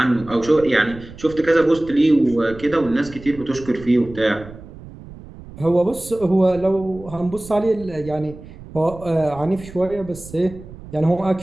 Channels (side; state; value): right; noise; rumble, 17 dB below the sound